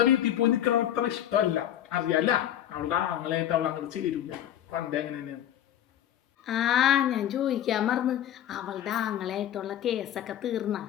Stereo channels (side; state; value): right; quieter; 11.3 dB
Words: വീട്ടിൽ പോയി നിൽക്കണം അത്ര ഇഷ്ടമല്ല, അറിയാല്ല. അവളുടെ ആങ്ങളായിട്ട് അവൾ അങ്ങോട്ട് ചേരൂല. പണ്ടേ അങ്ങനെ തന്നെയാണ്. ഞാൻ ചോദിക്കാൻ മറന്ന്, അവളുടെ ആങ്ങളായിട്ടുള്ള കേസൊക്കെ തീർന്ന?